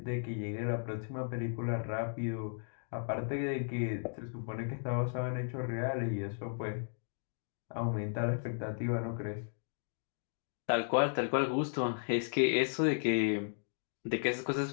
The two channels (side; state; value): right; silent; digital silence